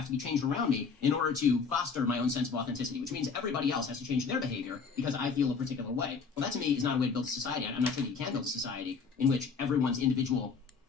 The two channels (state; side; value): quieter; right; 5.3 dB